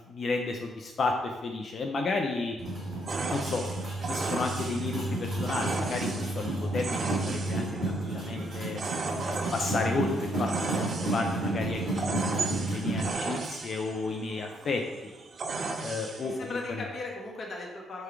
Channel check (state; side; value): normal; both; correlation 0.72